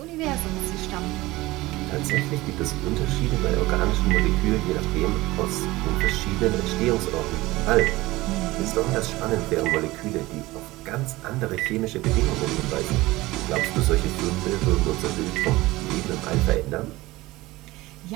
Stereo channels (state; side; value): quieter; left; 19.4 dB